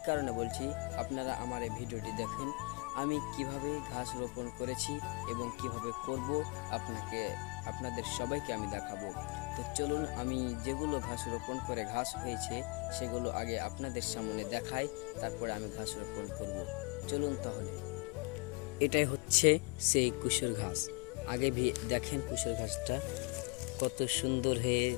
কারণে বলছি, আপনারা আমার এই ভিডিওটি দেখুন। আমি কিভাবে ঘাস রোপণ করেছি এবং কিভাবে করব আপনাদের সবাইকে আমি দেখাবো। তো চলুন, আমি যেগুলো ঘাস রোপণ করে ঘাস হয়েছে সেগুলো আগে আপনাদের সামনে দেখাই, তারপরে আমি ঘাস রোপণ করব। চলুন তাহলে। এটাই হচ্ছে সেই কুশর ঘাস। আগে দেখেন কুশর ঘাসটা কত সুন্দর হয়ে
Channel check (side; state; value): right; quieter; 29.8 dB